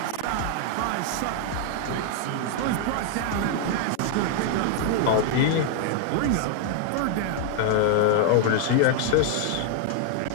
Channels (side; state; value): both; different; correlation 0.00